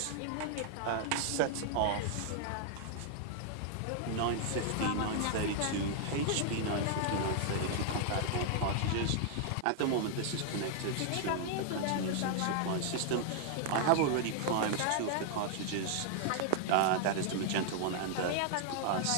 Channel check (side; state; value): both; different; correlation 0.00